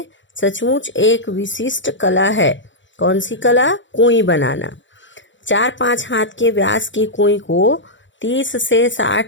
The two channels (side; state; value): right; late; 0.54 ms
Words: सचमुच एक विशिष्ट कला है। कौन सी कला? कुएं बनाना। 4-5 हाथ के व्यास की कुएं को 30 से